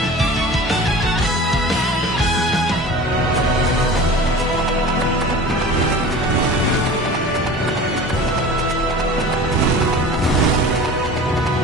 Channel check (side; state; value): both; normal; correlation 0.38